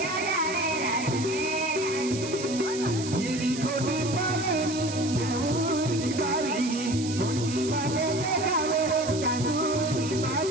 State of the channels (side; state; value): right; noise; hiss, 9 dB below the sound